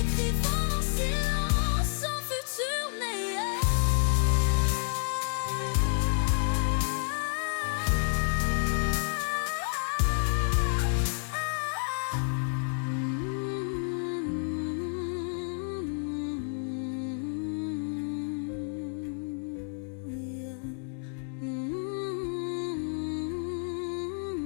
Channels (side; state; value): right; silent; 58 dB below the other